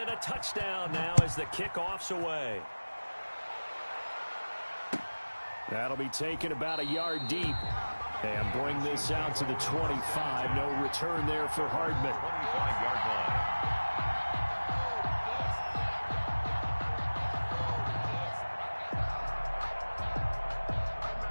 a touchdown now as the kickoff's away. That'll be taken about a yard deep. And bring this out to the 25. No return there for Hardman. 25-yard line.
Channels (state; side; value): inverted; both; correlation -1.00